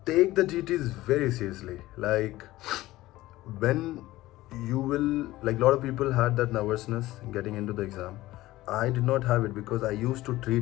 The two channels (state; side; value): quieter; right; 17.1 dB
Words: take the GTs very seriously. Like when you will, like a lot of people had that nervousness getting into the exam. I did not have it because I used to